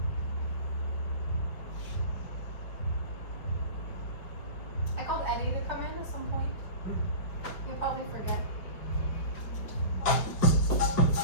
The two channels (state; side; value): late; right; 5.1 ms